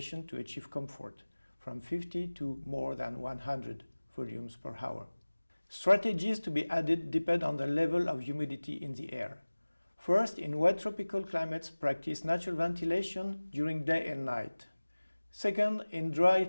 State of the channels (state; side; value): inverted; both; correlation -1.00